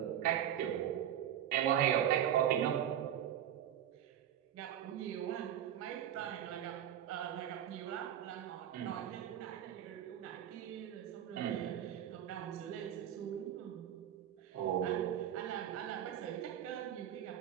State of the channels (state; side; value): quieter; left; 10.6 dB